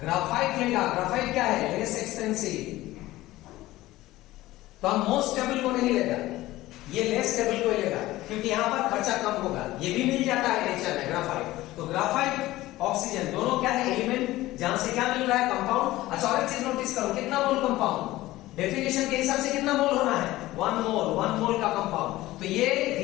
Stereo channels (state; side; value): quieter; right; 17.1 dB